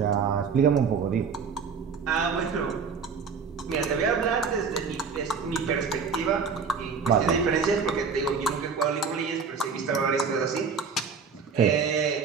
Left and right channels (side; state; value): left; quieter; 5.6 dB